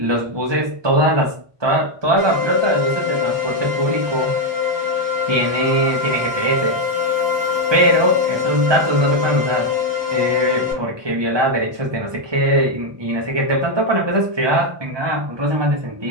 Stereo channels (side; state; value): left; late; 1.2 ms